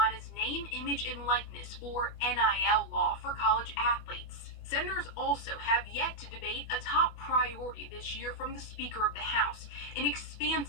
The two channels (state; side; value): late; right; 24 ms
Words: name, image, and likeness, or NIL law for college athletes. Senators also have yet to debate a top priority this year from the Speaker of the House, an